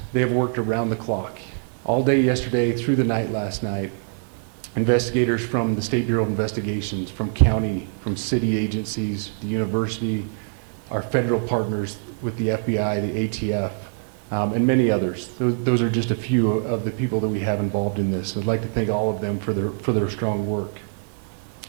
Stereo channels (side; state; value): left; silent; digital silence